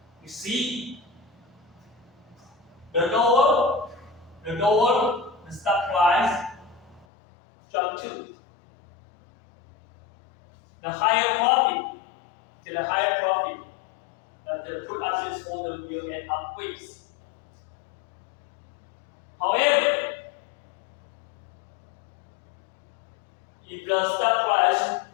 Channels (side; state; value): right; drops out; at 7.1 s